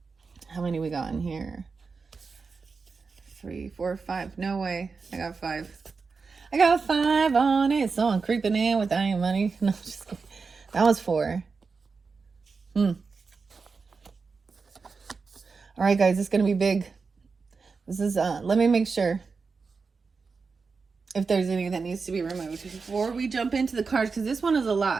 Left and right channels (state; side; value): quieter; left; 4.8 dB